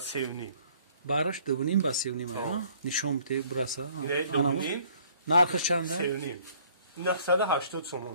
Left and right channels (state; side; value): inverted; both; correlation -0.59